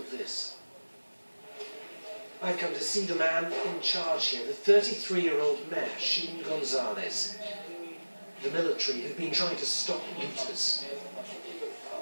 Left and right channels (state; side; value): inverted; both; correlation -1.00